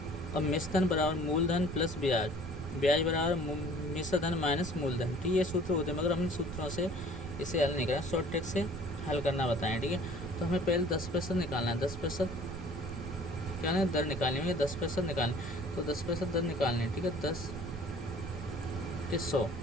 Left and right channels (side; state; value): right; noise; rumble, 9 dB below the sound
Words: अब मिश्रधन बराबर मूलधन प्लस ब्याज, ब्याज बराबर मिश्रधन माइनस मूलधन, ठीक है। ये सूत्र होते हैं, मगर हमने सूत्रों से इसे हल नहीं करा, शॉर्ट ट्रिक से हल करना बताएं, ठीक है। तो हमें पहले 10% निकालना है। 10% क्या है? दर निकालनी है। 10% निकालनी, तो 10% दर निकालनी है, ठीक है। 10 के 100,